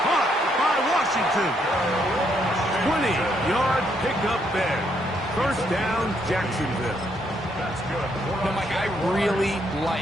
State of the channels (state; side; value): normal; both; correlation 0.73